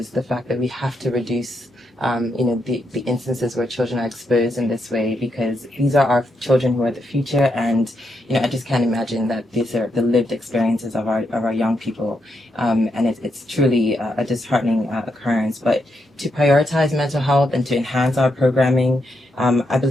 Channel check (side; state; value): both; normal; correlation 0.80